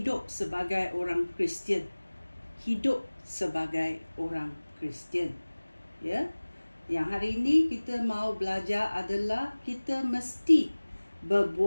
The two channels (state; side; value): inverted; both; correlation -1.00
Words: sebagai orang Kristian. Hidup sebagai orang Kristian. Ya. Yang hari ini kita mau belajar adalah kita mesti